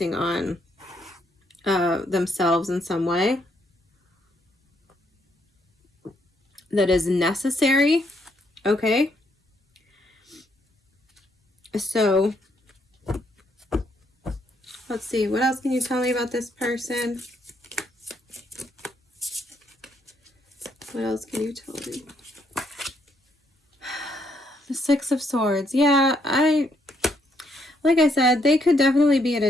on themselves in some way that is necessary. Okay, so let's see, what else can you tell me about this person? What else can you tell me? The Six of Swords. Yeah, like I said, they could definitely be at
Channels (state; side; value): normal; both; correlation 0.74